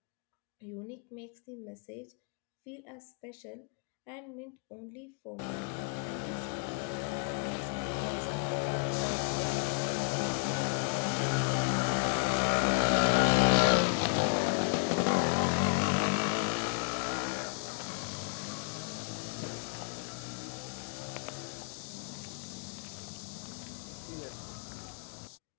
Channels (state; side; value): quieter; right; 39.8 dB